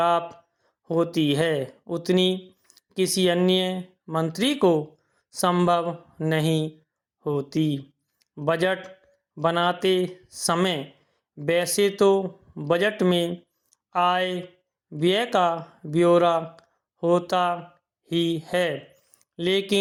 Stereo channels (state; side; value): identical; both; correlation 1.00